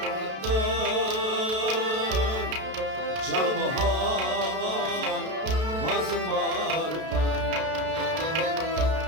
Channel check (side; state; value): left; late; 32 ms